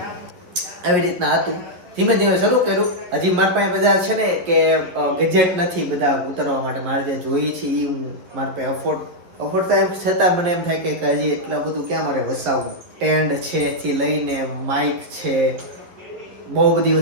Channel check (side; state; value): left; late; 11 ms